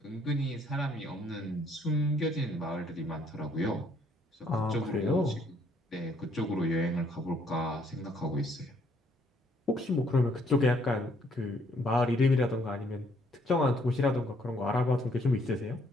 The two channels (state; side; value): normal; both; correlation 0.67